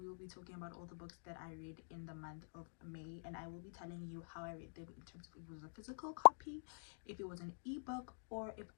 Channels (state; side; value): silent; right; digital silence